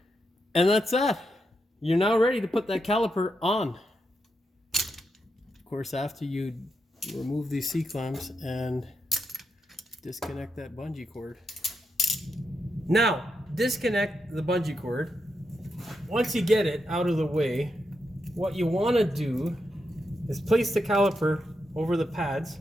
And that's that. You're now ready to put that caliper on. Of course, after you remove these C-clamps and disconnect that bungee cord. Now, disconnect the bungee cord. Once you get it out of the way, what you want to do is place the caliper over the pads,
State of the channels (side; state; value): both; normal; correlation 0.84